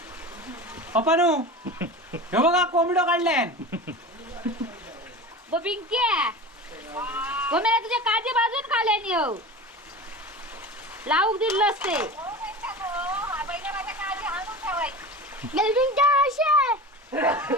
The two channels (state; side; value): normal; both; correlation 0.32